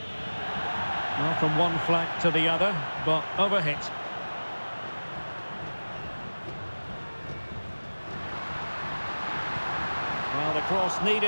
Well, from one flank to the other, but overhit. Well, the cross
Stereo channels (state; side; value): inverted; both; correlation -1.00